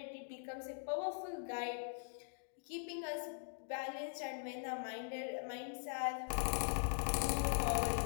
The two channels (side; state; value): right; silent; digital silence